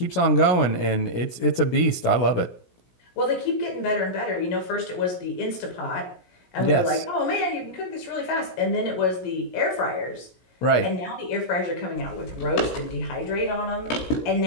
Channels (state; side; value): late; right; 17 ms